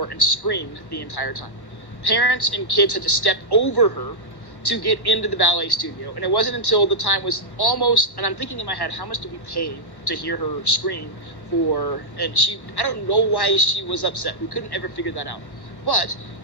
and screamed the entire time. Parents and kids had to step over her to get into the ballet studio, and it wasn't until the time was almost, and I'm thinking in my head, how much did we pay to hear her scream for, and I don't know why she was upset. We couldn't ever figure that out. But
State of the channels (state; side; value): late; right; 1.2 ms